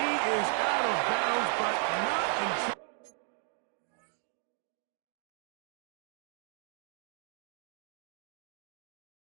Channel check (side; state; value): left; silent; 54 dB below the other